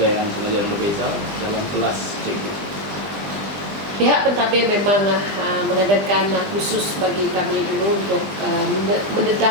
pengajaran berbeza dalam kelas cikgu? Pihak pentadbir memang mengadakan khusus bagi kami dulu untuk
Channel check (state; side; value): late; left; 20 ms